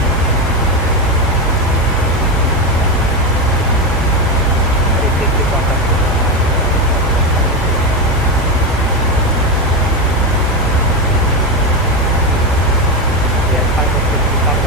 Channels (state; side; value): normal; both; correlation 0.12